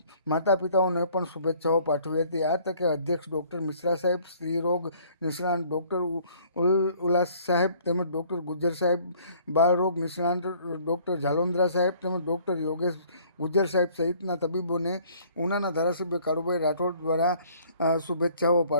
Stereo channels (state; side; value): inverted; both; correlation -0.57